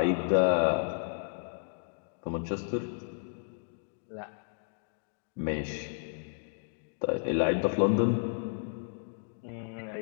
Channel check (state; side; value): silent; right; digital silence